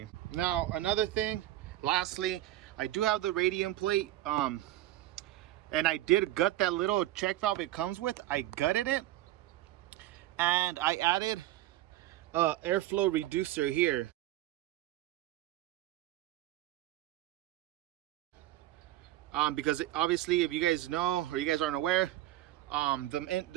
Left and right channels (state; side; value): quieter; left; 14.9 dB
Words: Now, another thing, lastly, I do have the radium plate, and I did gut that little check valve it comes with. I gutted it, and I added a airflow reducer here. Because obviously, if you guys know or you guys aren't aware,